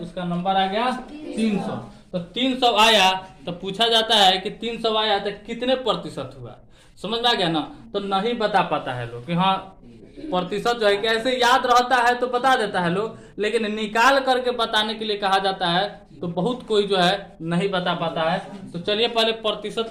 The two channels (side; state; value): both; identical; correlation 1.00